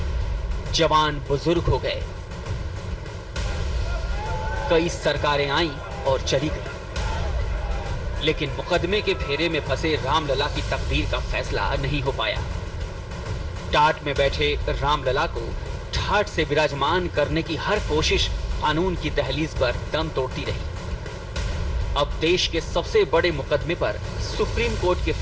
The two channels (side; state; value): both; identical; correlation 1.00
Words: जवान बुजुर्ग हो गए, कई सरकारें आईं और चली गईं, लेकिन मुकदमे के फेरे में फंसे रामलला की तकदीर का फैसला नहीं हो पाया। टाट में बैठे रामलला को ठाट से विराजमान करने की हर कोशिश कानून की दहलीज पर दम तोड़ती रही। अब देश के सबसे बड़े मुकदमे पर सुप्रीम कोर्ट के